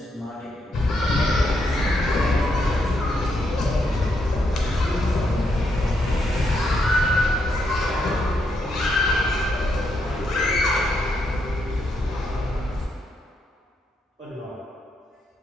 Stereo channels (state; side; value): normal; both; correlation 0.79